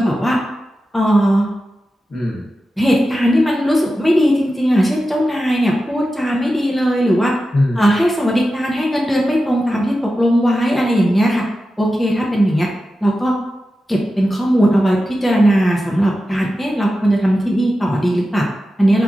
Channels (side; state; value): both; normal; correlation 0.92